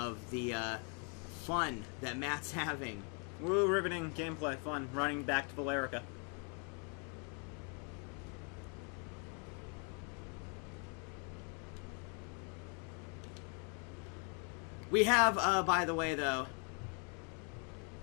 the fun that Matt's having. Woo, riveting gameplay, fun, running back to Valerica. We have, by the way, though,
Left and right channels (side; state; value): right; quieter; 37.9 dB